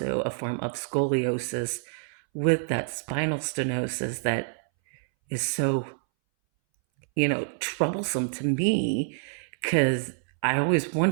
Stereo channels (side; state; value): left; silent; 60 dB below the other